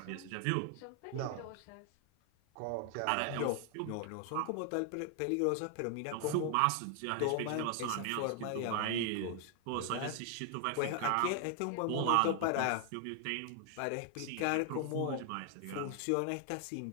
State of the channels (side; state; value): both; different; correlation 0.00